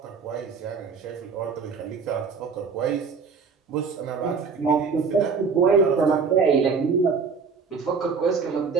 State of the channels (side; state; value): left; quieter; 5.3 dB